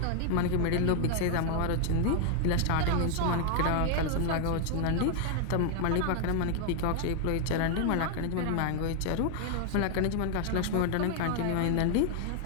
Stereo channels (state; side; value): different; both; correlation 0.00